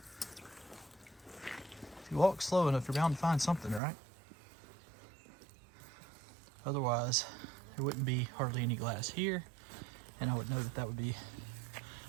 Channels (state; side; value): drops out; left; at 3.8 s